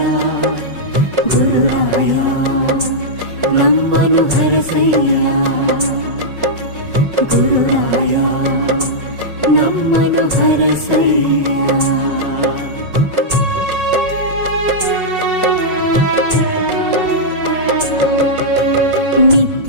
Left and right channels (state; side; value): late; left; 5.4 ms